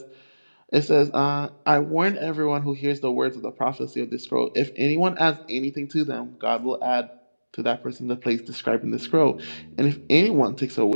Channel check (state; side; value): inverted; both; correlation -1.00